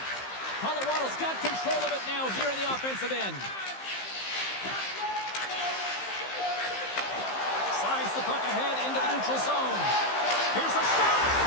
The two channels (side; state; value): right; late; 15 ms